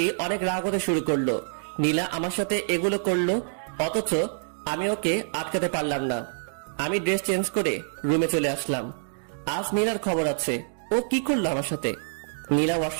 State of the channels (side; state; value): left; silent; digital silence